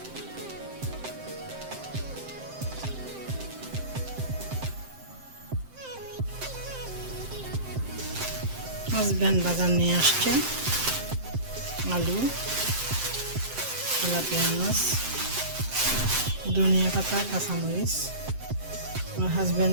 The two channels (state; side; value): late; left; 7.7 ms